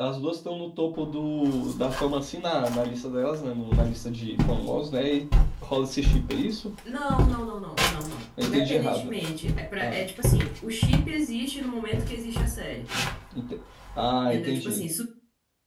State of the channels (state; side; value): identical; both; correlation 1.00